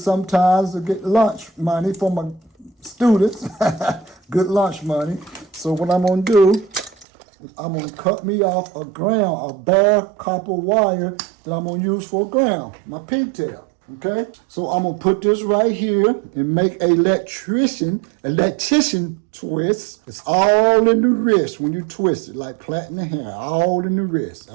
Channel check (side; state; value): left; drops out; at 7.1 s